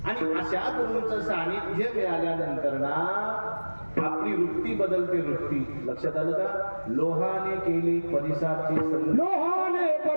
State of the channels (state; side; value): inverted; both; correlation -1.00